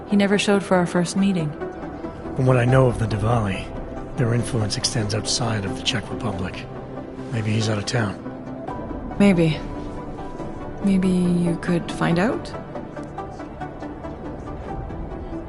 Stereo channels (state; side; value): identical; both; correlation 1.00